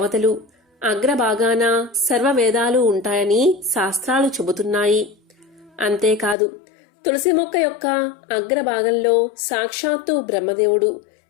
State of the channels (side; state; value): right; drops out; at 6.4 s